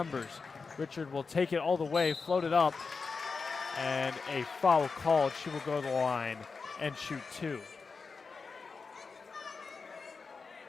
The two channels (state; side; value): quieter; right; 4.7 dB